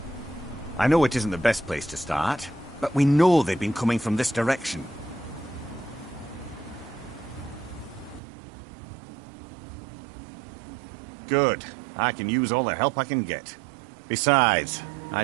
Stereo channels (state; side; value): drops out; left; at 8.2 s